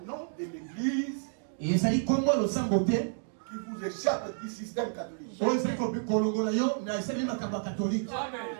nom de l'église qui vous échappe du système catholique.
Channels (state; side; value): silent; left; digital silence